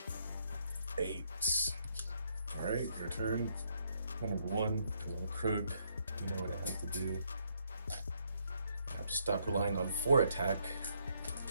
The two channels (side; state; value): both; inverted; correlation -0.73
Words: All right, your turn. Number 1, because I'm a crook, you know what I have to do. I have to stop relying on 4 attack